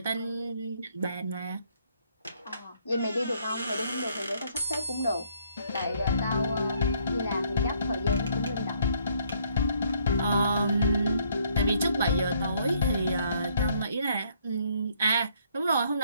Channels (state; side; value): inverted; both; correlation -0.67